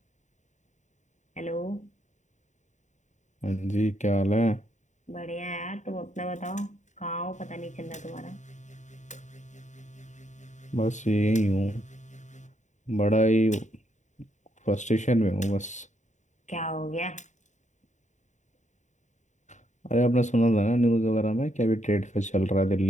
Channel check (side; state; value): right; late; 0.35 ms